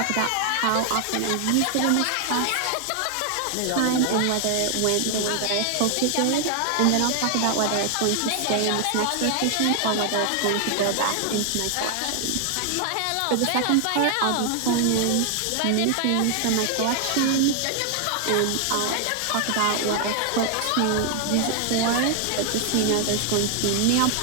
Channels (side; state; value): both; different; correlation 0.00